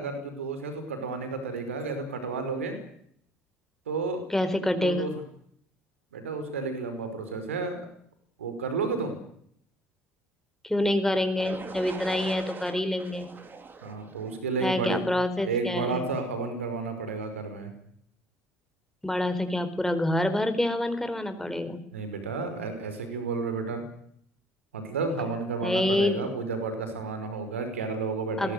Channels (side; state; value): both; normal; correlation 0.54